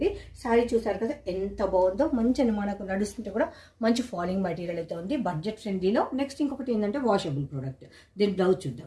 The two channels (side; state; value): both; identical; correlation 1.00